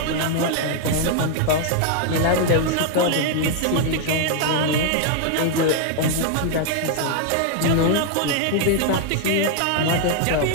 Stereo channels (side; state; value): both; different; correlation 0.00